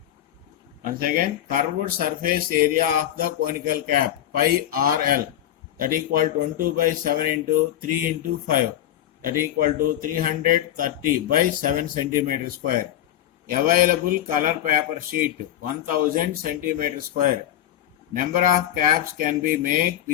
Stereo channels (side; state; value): right; quieter; 12.0 dB